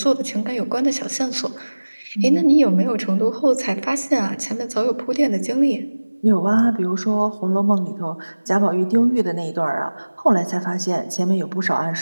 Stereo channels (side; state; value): both; inverted; correlation -1.00